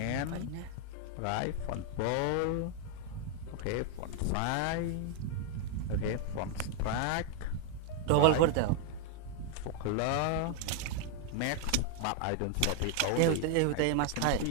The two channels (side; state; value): both; different; correlation 0.00